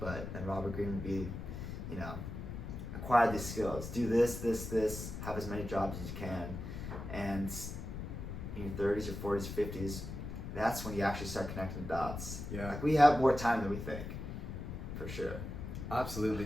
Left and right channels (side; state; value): left; noise; rumble, 7 dB below the sound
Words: then Robert Greene would be, acquire these skills, do this, have as many jobs as you can, and in your 30s or 40s or 50s, that's when you actually start connecting the dots. Yeah. Like, we have more time than we think, for sure. Absolutely.